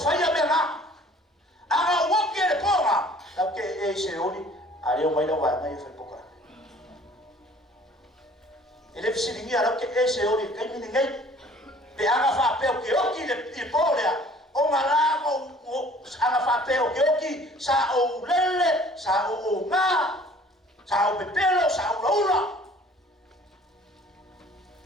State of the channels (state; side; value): normal; both; correlation 0.52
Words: me nga anga woki le po nga la ke e se oni ale o mai la wa ngai fe poka ele fisi ni ala ke e se oni ke ni ngai be anga fa pe o ke oki le po le o nga la o anga fa pe o ke oki sa o lele sa o nga sa o pepelo sa o laula